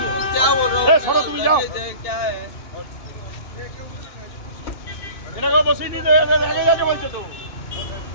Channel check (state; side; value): late; right; 2.8 ms